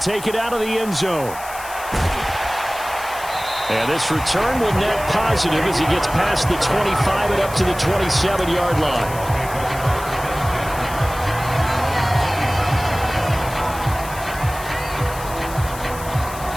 it out of the end zone. And this return will net positive as he gets past the 25 and up to the 27-yard line.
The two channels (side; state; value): left; noise; hiss, 14 dB below the sound